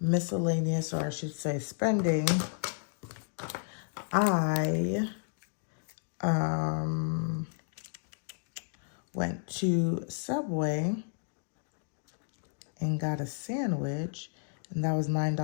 or I should say spending, I went to Subway and got a sandwich, and that was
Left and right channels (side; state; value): right; silent; digital silence